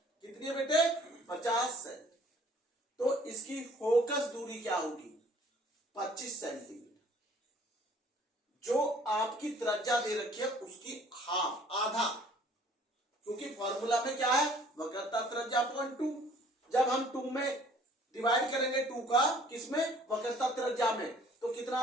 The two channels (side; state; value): both; normal; correlation 0.56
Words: कितनी है बेटे? 50 सेंटी। तो इसकी फोकस दूरी क्या होगी? 25 सेंटीमीटर। जो आपकी त्रिज्या दे रखी है उसकी हाफ, आधा, क्योंकि फॉर्मूला में क्या है? वक्रता त्रिज्या अपॉन 2। जब हम 2 में डिवाइड करेंगे 2 का किसमें? वक्रता त्रिज्या में, तो कितना